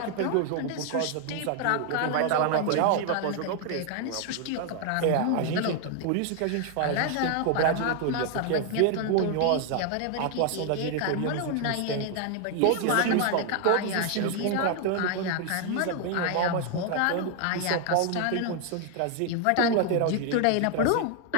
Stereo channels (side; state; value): both; different; correlation 0.00